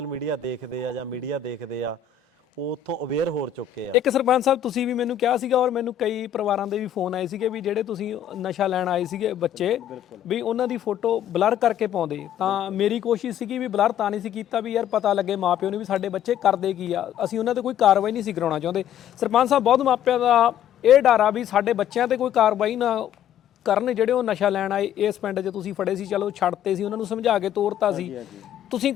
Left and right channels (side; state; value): right; quieter; 9.8 dB